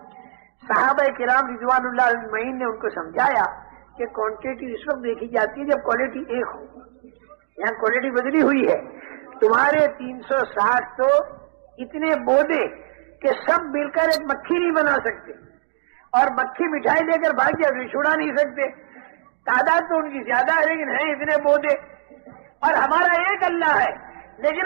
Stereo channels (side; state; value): left; silent; digital silence